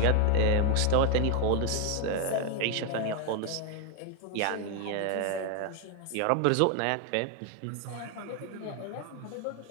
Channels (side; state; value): both; different; correlation 0.01